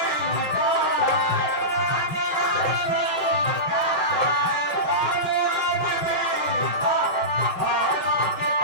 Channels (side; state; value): right; late; 5.6 ms